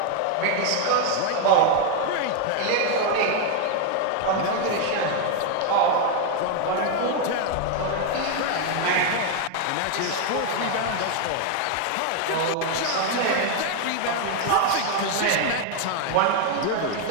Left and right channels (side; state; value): both; different; correlation 0.01